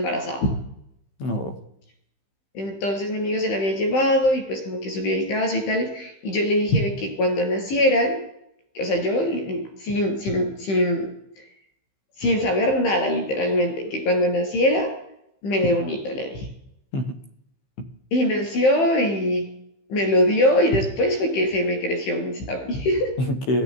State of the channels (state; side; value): late; right; 15 ms